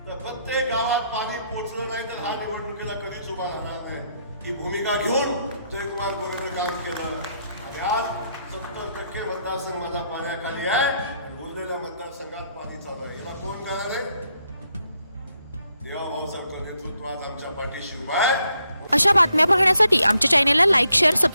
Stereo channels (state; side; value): inverted; both; correlation -0.76